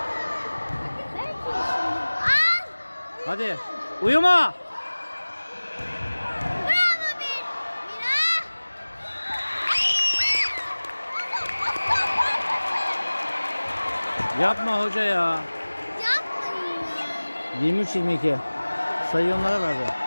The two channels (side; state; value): both; inverted; correlation -1.00